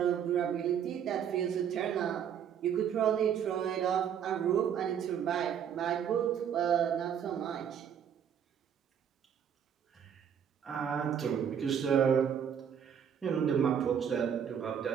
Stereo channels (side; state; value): left; quieter; 8.4 dB